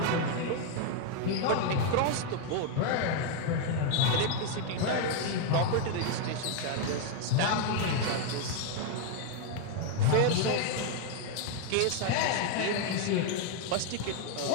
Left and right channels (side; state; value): both; different; correlation 0.01